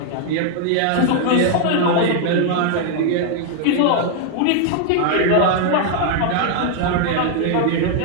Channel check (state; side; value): different; both; correlation 0.00